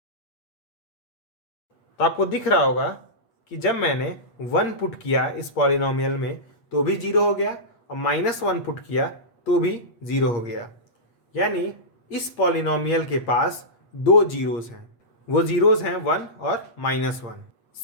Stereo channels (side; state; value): right; late; 8.6 ms